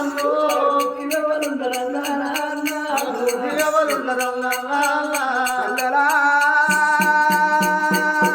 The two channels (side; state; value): both; identical; correlation 1.00